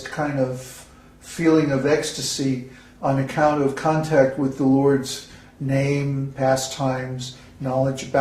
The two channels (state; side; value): identical; both; correlation 1.00